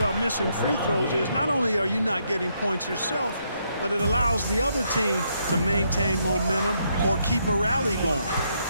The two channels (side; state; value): both; inverted; correlation -0.76